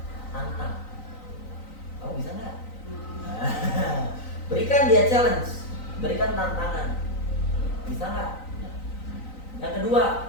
tantang. Kamu bisa nggak? Berikan dia challenge, berikan tantangan. Bisa nggak? Yang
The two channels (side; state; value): right; late; 3.9 ms